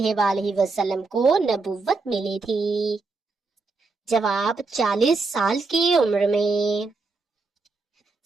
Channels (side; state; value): left; quieter; 3.8 dB